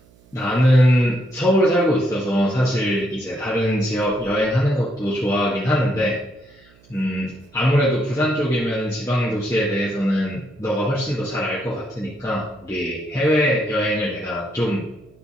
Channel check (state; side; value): noise; right; hum, 29 dB below the sound